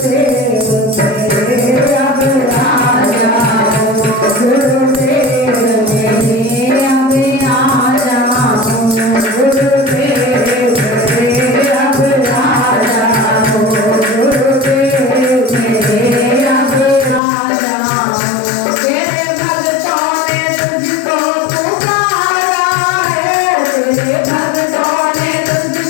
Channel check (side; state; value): right; drops out; at 17.2 s